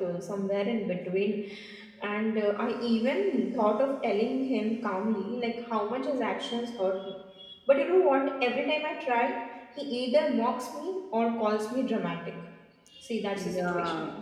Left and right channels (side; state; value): both; identical; correlation 1.00